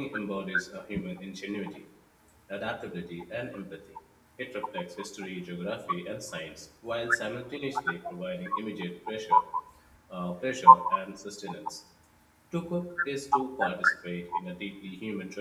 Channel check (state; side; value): identical; both; correlation 1.00